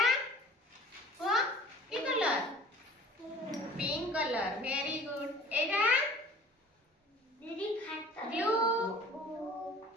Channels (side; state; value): both; normal; correlation 0.46